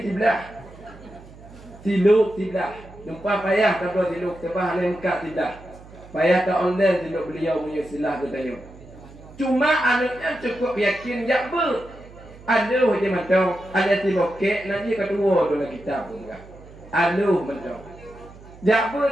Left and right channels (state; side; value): noise; right; hum, 20 dB below the sound